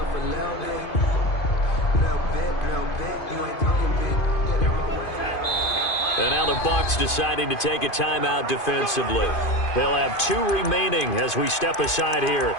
And now the Bucs deciding to take a timeout defensively. They'll have 2 remaining as we step aside here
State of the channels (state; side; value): late; right; 2.5 ms